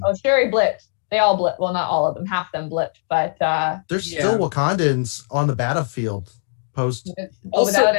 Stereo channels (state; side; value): silent; right; digital silence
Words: Shuri blipped. They all blipped. Well, not all of them. Half of them blipped, but there's still Wakandans on the battlefield post. Also, Without